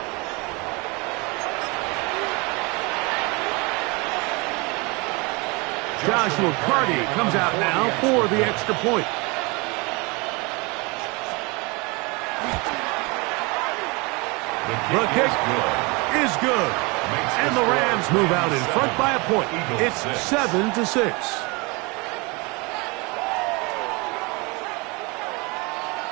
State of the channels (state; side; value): quieter; left; 27.6 dB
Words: Joshua Carty comes out now for the extra point. The kick is good. And the Rams move out in front by a point. It's 7-6.